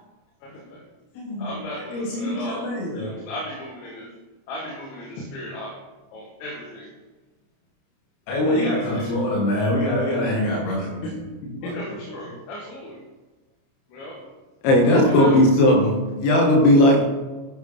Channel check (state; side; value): late; right; 29 ms